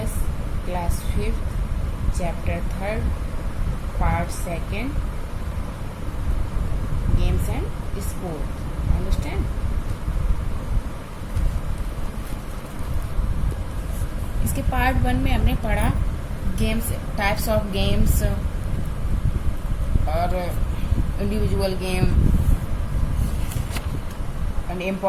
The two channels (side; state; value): both; identical; correlation 1.00